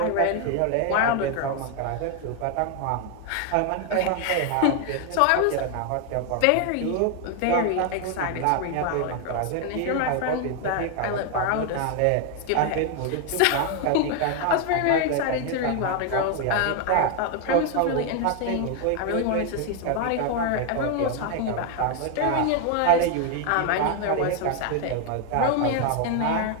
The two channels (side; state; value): both; different; correlation 0.00